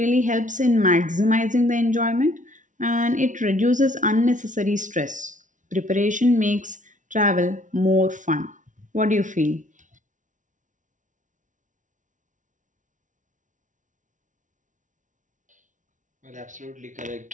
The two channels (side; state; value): left; late; 0.37 ms